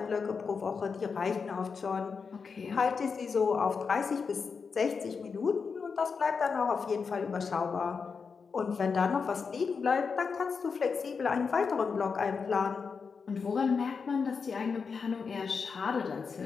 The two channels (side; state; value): right; quieter; 5.4 dB